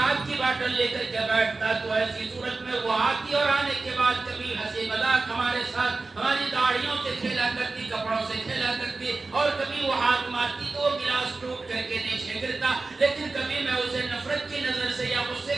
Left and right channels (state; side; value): quieter; left; 3.6 dB